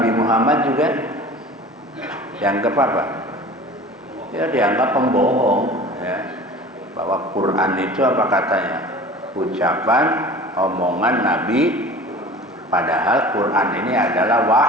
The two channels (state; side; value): normal; both; correlation 0.40